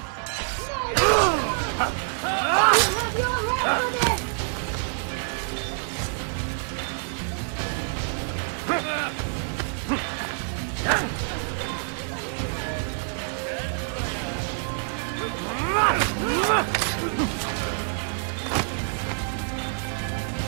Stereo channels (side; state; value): left; silent; 57 dB below the other